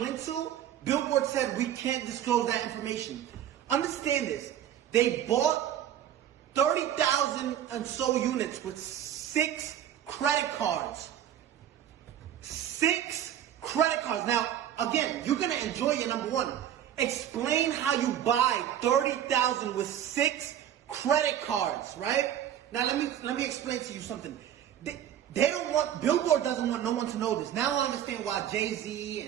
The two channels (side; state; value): left; quieter; 10.6 dB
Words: to, Billboard said we can't disclose that information. Understand this. They bought 30,000 and so units with 6 credit cards. 6 credit cards. Now, again, you're going to enjoy your number 1. Explain how you buy 30,000 with 6 credit cards, right? Now, let me explain to you something. They don't want, Billboard doesn't want no one to know this. Now I understand why Jay-Z